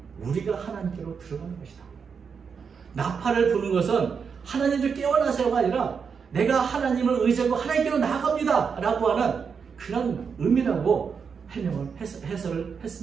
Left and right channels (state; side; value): quieter; left; 6.1 dB